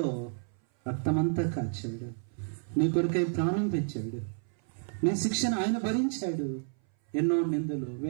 రక్తమంతా కాచాడు. నీ కొరకై ప్రాణం పెంచాడు. నీ శిక్షను ఆయన భరించాడు. ఎన్నో నిందలు,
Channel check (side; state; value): left; silent; 57 dB below the other